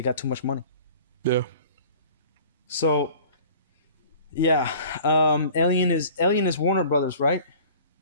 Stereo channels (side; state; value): both; inverted; correlation -0.46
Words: too much money. Yeah. So, yeah, Alien is Warner Brothers, right?